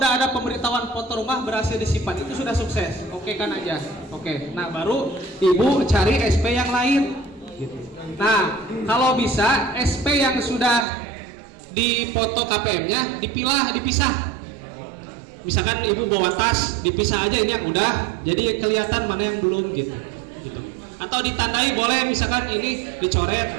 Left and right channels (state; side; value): drops out; left; at 10.9 s